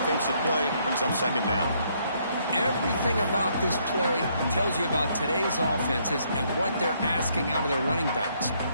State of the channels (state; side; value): inverted; both; correlation -0.70